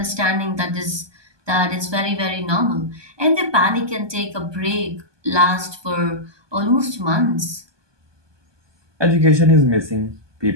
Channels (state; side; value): late; left; 1.2 ms